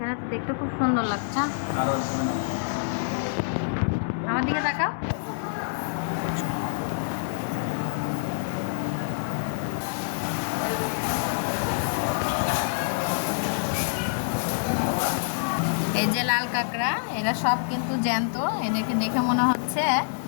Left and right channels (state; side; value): silent; right; 60 dB below the other